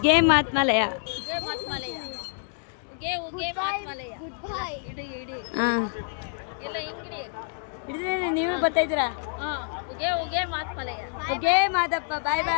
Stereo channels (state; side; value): silent; right; 60 dB below the other